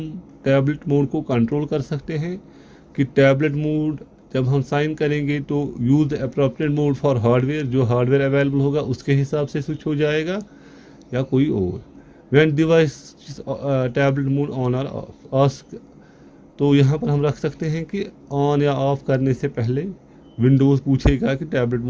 टैबलेट मोड को कंट्रोल कर सकते हैं कि टैबलेट मोड जब हम साइन करेंगे तो use the appropriate mode for hardware, जो हार्डवेयर अवेलेबल होगा उसके हिसाब से स्विच हो जाएगा या कोई और। When device tablet mode on और ऑफ, तो यहाँ पर हम रख सकते हैं कि ऑन या ऑफ करने से पहले विंडोज़ पूछेगा कि टैबलेट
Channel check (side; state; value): both; identical; correlation 1.00